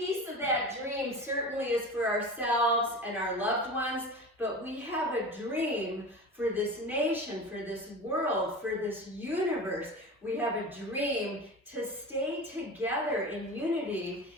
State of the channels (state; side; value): normal; both; correlation 0.32